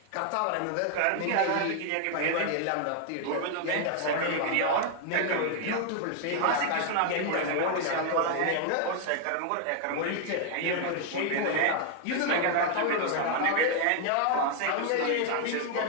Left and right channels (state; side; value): different; both; correlation 0.00